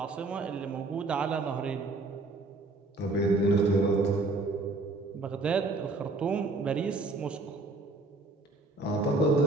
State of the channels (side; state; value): left; quieter; 3.3 dB